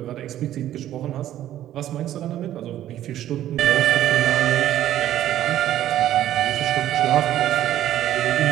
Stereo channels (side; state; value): left; quieter; 12.6 dB